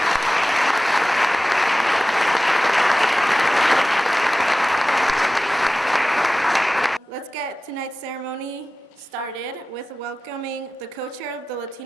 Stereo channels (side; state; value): both; normal; correlation 0.96